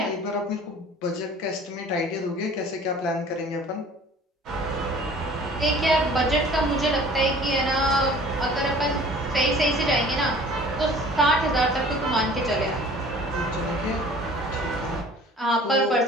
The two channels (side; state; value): both; normal; correlation 0.48